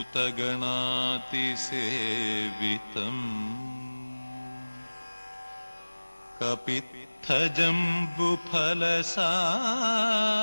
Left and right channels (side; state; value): both; inverted; correlation -1.00